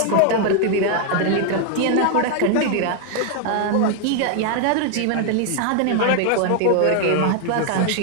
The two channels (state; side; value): different; both; correlation 0.00